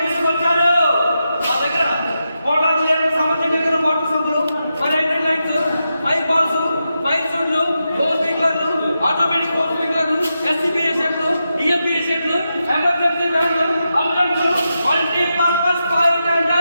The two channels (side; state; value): both; inverted; correlation -0.87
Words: ఎమర్జెన్సీ వ్యాన్లు, అంబులెన్సులు, మల్టీపర్పస్ ఫైర్